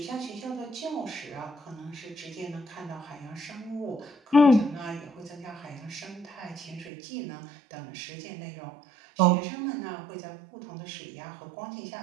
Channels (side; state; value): left; drops out; at 6.9 s